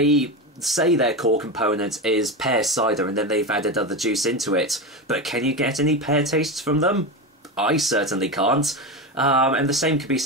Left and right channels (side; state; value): both; normal; correlation 0.18